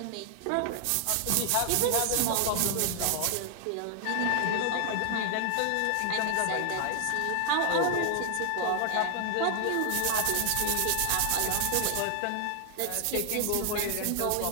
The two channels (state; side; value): different; both; correlation 0.00